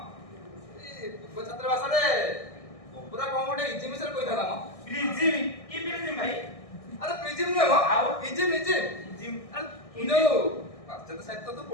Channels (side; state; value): right; late; 1.6 ms